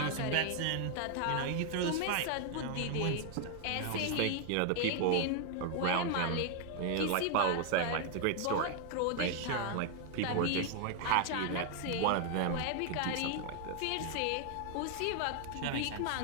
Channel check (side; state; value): both; different; correlation 0.00